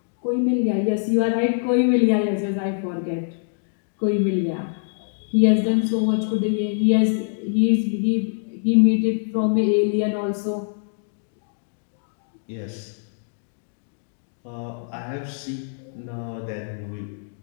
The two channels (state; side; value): silent; right; digital silence